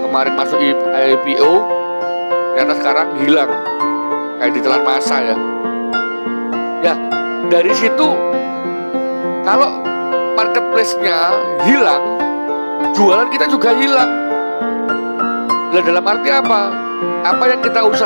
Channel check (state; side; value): inverted; both; correlation -1.00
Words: masuk IPO, ternyata sekarang hilang, kayak ditelan masa ya. Ya, dari situ kalau marketplace-nya hilang, jualan kita juga hilang. Nah, dalam arti apa? Apa yang kita